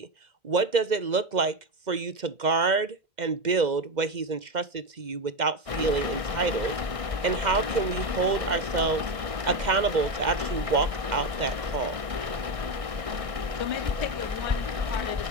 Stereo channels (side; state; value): left; late; 1.6 ms